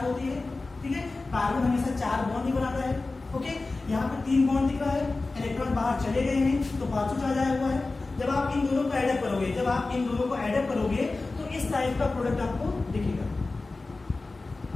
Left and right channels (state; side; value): quieter; right; 3.5 dB